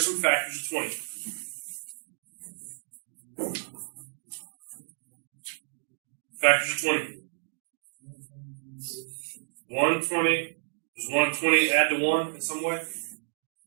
factors of 20? Factors of 20. 120. Does 120 add to 1 in some way?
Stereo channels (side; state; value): left; silent; digital silence